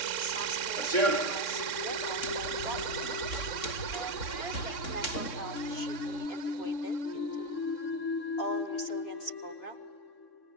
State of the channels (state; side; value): late; right; 3.6 ms